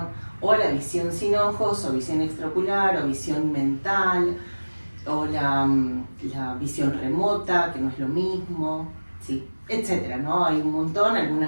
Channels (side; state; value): both; inverted; correlation -1.00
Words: o la visión sin ojos, o visión extraocular, o visión mental, o la visión remota, que no es lo mismo, sí, etcétera, ¿no? Hay un montón,